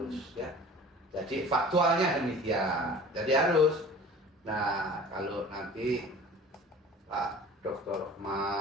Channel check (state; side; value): normal; both; correlation 0.43